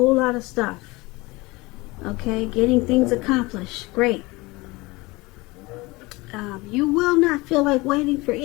lot of stuff. Okay? Getting things accomplished. Great. You will not feel like waiting for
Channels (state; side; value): quieter; right; 22.9 dB